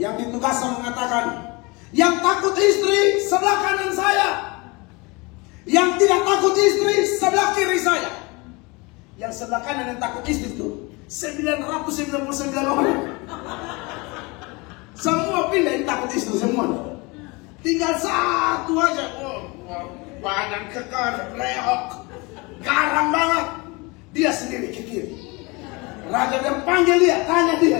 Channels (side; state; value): right; quieter; 26.4 dB